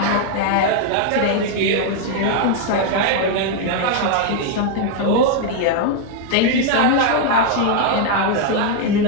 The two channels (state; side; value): different; both; correlation 0.00